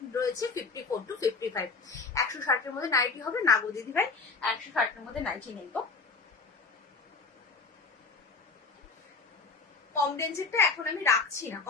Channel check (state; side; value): quieter; right; 4.4 dB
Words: রয়েছে 54 to 55। 160 এর মধ্যে নাইটি হবে না গো দিদি ভাই, 160 এর মধ্যে নাইটি নেই গো। কম রেঞ্জেরটা এখন আমি রাখছি না,